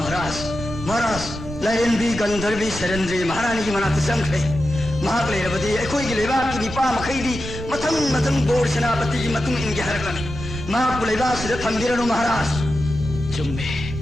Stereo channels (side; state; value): right; noise; rumble, 9 dB below the sound